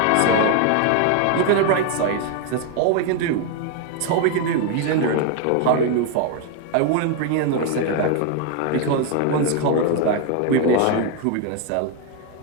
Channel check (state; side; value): different; both; correlation 0.01